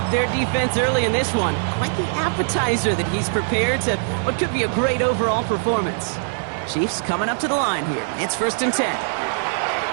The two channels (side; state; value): left; silent; 64 dB below the other